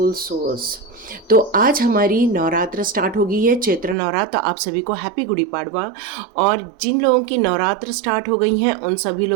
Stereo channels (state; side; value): drops out; left; at 4.0 s